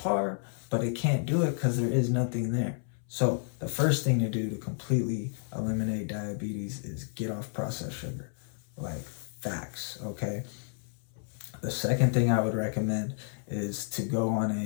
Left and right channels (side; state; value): right; silent; 57 dB below the other